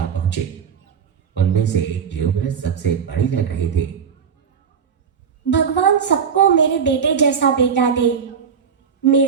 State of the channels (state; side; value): quieter; left; 6.8 dB